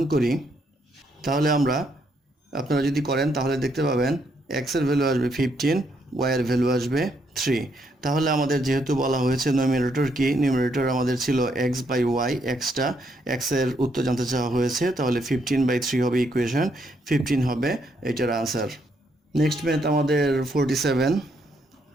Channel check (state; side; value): normal; both; correlation 0.74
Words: করি তাহলে আপনারা যদি করেন তাহলে দেখতে পাবেন x এর ভ্যালু আসবে 15, y এর ভ্যালু আসবে 3। তাহলে আমাদের যেহেতু বলা হয়েছে নিউমারেটর কি, নিউমারেটর আমাদের ছিল x/y, x এর উত্তর জানতে চাওয়া হয়েছে, তাহলে 15/3 হবে ইকুয়েশন, 15 হবে এটার আনসার। নেক্সট ম্যাথ আমাদের 47